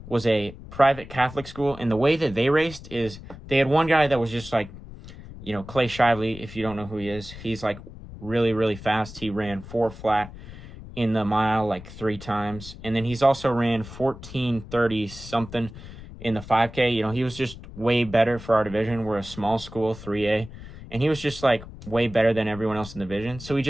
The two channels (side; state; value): left; noise; rumble, 15 dB below the sound